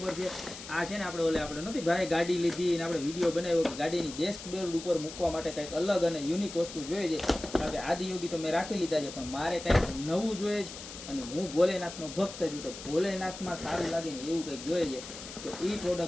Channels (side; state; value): left; noise; hiss, 12 dB below the sound